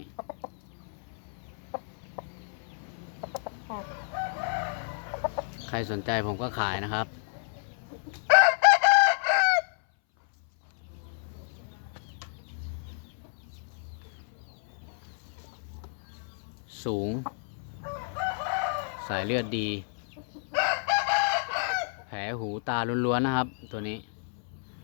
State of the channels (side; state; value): right; silent; 57 dB below the other